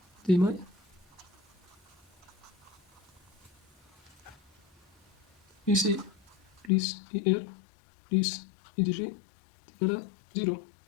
de May. Ici, plus IR, plus IDG est égal à 0.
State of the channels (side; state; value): right; drops out; at 6.7 s